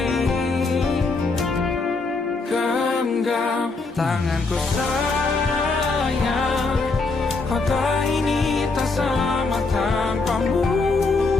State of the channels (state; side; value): quieter; right; 3.8 dB